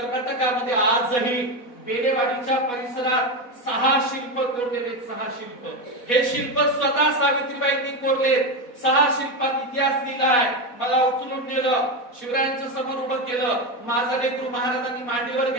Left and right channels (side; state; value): right; late; 4.1 ms